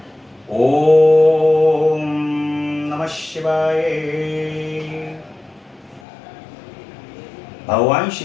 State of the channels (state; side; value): drops out; right; at 6.1 s